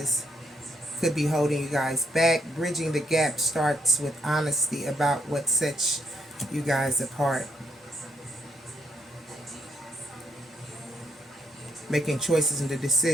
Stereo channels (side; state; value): both; normal; correlation 0.74